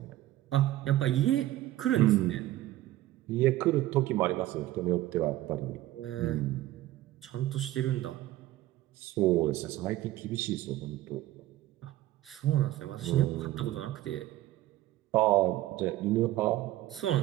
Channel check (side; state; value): left; quieter; 15.3 dB